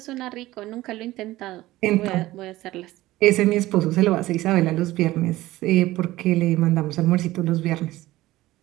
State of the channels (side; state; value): left; quieter; 17.1 dB